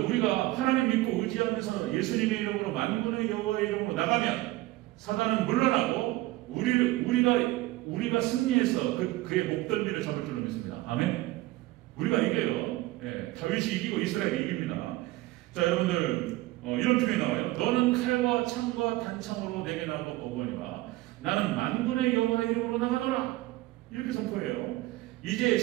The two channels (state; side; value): quieter; left; 18.3 dB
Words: 우리가 하나님 믿고 의지하면서 예수님의 이름으로 만군의 여호와의 이름으로 나가면 사단은 물러나고 우리가 승리해서 그의 목덜미를 잡을 줄로 믿습니다. 아멘. 우리가 이겨요. 예, 다윗이 이기고 이스라엘이 이깁니다. 자, 여러분들 이런 표현이 나와요. 너는 칼과 창과 단창으로 내게 나오고 오거니와 나는 만군의 여호와의 이름으로 나가노라. 이렇게 선포해요. 이제